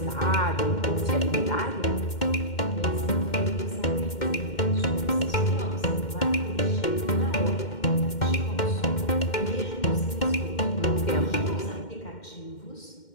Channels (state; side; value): late; right; 2.1 ms